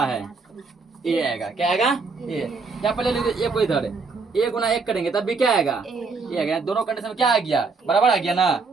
है, ए आएगा। क्या आएगा, ए। या पहले लिख ए को इधर, ए गुना 1 करेंगे तब भी क्या आएगा, ए आएगा। दोनों कंडीशन में क्या आ गया, बराबर आ गया ना।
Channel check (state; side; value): quieter; left; 4.3 dB